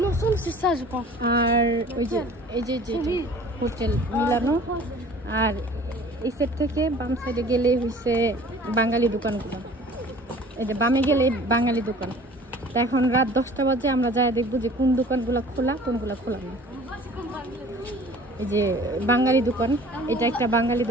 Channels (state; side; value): normal; both; correlation 0.48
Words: আর ওই যে এই যে হোটেল মিলানো। আর এই সাইড থেকে বাম সাইডে গেলে হচ্ছে বাঙালি দোকানগুলো। এই যে বামে গেলে বাঙালি দোকান। তা এখন রাত 10টা বাজে, আমরা যাই দেখবো যে কোন দোকানগুলো খোলা কোনগুলো খোলা না। এই যে বাঙালি দোকান, এটা একটা বাঙালি